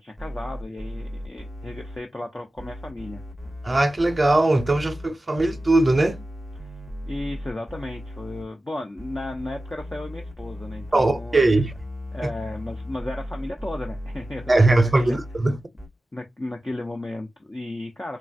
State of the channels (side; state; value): both; normal; correlation 0.94